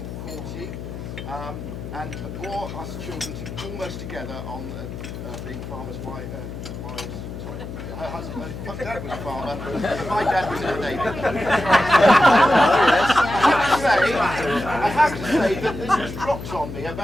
And bore us children almost together on being farmers' wives. Sorry, her husband, my dad was a farmer, and my dad was in the Navy. I have to say that this was dropped on me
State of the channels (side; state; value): left; noise; hum, 9 dB below the sound